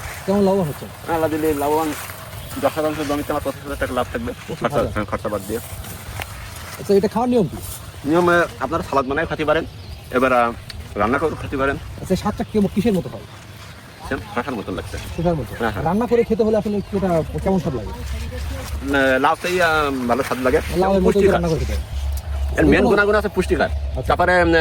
কেমন লাভবান হচ্ছে? আল্লাহ দিলে লাভবান 10% জমিতে আমার 25,000 টাকা লাভ থাকবে খরচা বাদ দিয়ে। আচ্ছা, এটা খাওয়ার নিয়ম কি? নিয়মে আপনারা সালাদ বানায় খেতে পারেন, এবার রান্না করে খেতে পারেন। আচ্ছা, স্বাদটা কিসের মতো হয়? শশার মতন লাগছে। শশার মতো? হ্যাঁ, হ্যাঁ। রান্না করে খেতে হলে আসলে এটা কেমন স্বাদ লাগে? লাউটাই ভালো স্বাদ লাগে। লাউয়ের মতো রান্না করে খেতে? এর মেন গুণাগুণ আছে পুষ্টিকর, তারপরে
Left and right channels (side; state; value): both; identical; correlation 1.00